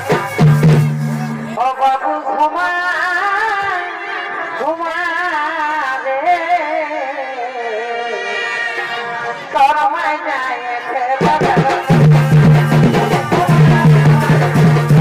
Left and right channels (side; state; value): both; identical; correlation 1.00